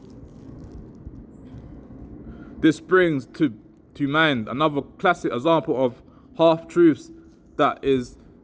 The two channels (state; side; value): identical; both; correlation 1.00